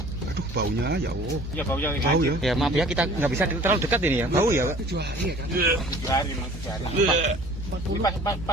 Aduh baunya ya Allah. Ya baunya Bau ya? Ya maaf ya kita nggak bisa terlalu dekat ini ya. Bau ya Pak? 7 hari ya kan? 7 hari, 7 hari. Ini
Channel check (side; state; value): both; normal; correlation 0.49